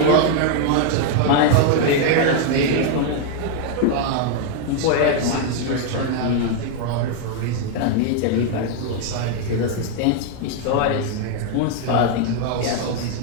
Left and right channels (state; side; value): different; both; correlation 0.00